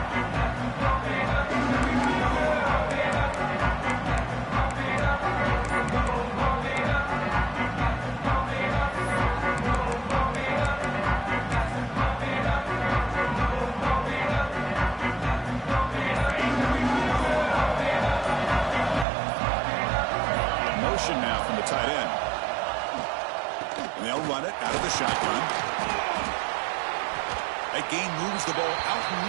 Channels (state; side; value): drops out; left; at 19.1 s